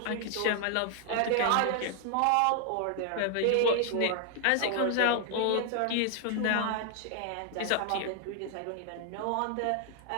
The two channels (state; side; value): different; both; correlation 0.00